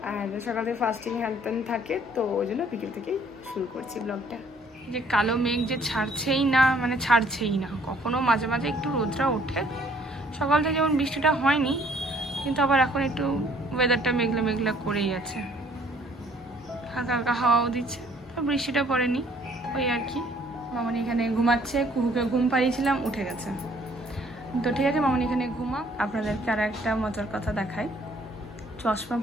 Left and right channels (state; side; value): normal; both; correlation 0.61